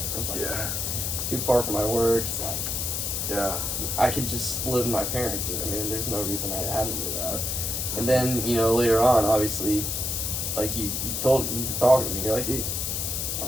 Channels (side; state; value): left; noise; hiss, 1 dB below the sound